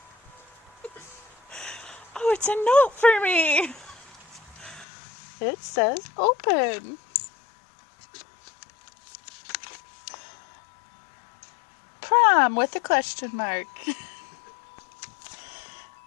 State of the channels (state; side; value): drops out; right; at 4.9 s